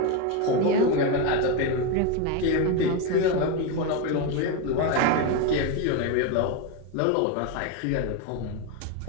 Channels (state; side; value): different; both; correlation 0.03